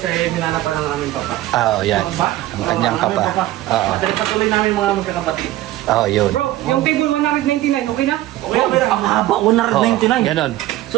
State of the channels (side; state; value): left; quieter; 15.4 dB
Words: ay hinanapan ng aming papa. Oo, yan. Ang kanyang papa. Oo. Patuloy namin mga magkakapatid. Oo, yun. Bro, yung table 199, okay na? Okay, pero ang haba, 199. Ganon.